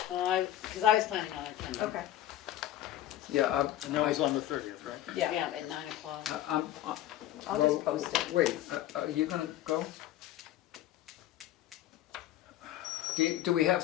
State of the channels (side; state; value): right; quieter; 13.1 dB